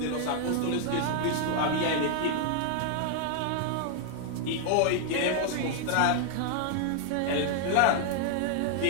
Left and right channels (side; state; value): both; different; correlation 0.00